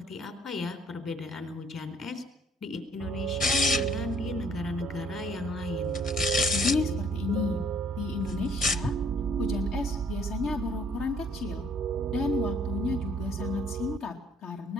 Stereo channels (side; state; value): both; normal; correlation 0.62